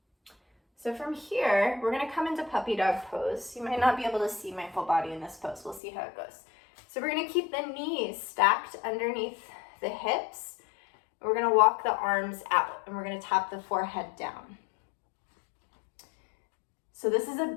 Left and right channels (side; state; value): right; drops out; at 5.8 s